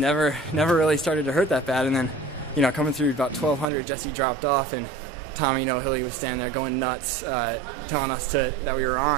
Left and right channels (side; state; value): left; drops out; at 3.7 s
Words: really started to hurt that bad. And then coming through about 1200, Jesse dropped off, and Tommy Hilly was standing there going nuts, telling us that we were